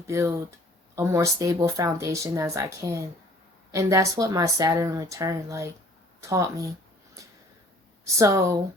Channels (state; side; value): normal; both; correlation 0.53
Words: a more stable foundation as I can. And that's what my Saturn return taught me. So,